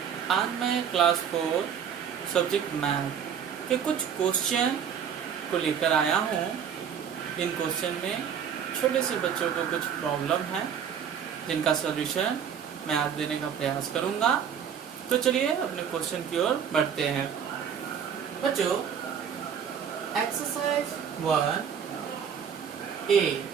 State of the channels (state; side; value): quieter; left; 7.9 dB